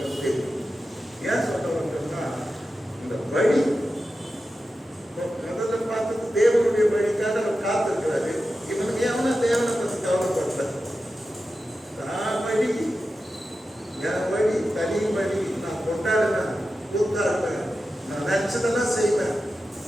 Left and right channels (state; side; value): normal; both; correlation 0.92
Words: தெரியும். ஏன் சொல்றவங்கன்னா இந்த வழி முதல்ல பார்த்தது தேவனுடைய வழிக்காக அவர் காத்திருக்கிறாரு. இவனுக்கு எவனா தேவனை பற்றி கவலைப்பட்ட வழி, என் வழி தனி வழி, நான் கொண்டாடுவேன், கூத்தாடுவேன், நான் நினைச்சதெல்லாம் செய்வேன்.